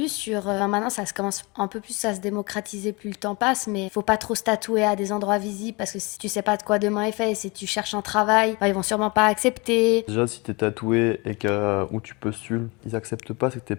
sur... maintenant, ça se commence un peu plus à se démocratiser plus le temps passe, mais faut pas trop se tatouer à des endroits visibles parce que si tu sais pas de quoi demain est fait et si tu cherches un travail, bah, ils vont sûrement pas accepter. Déjà, si t'es tatoué et que où tu postules, ils acceptent pas, c'est que t'es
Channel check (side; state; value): right; quieter; 27.0 dB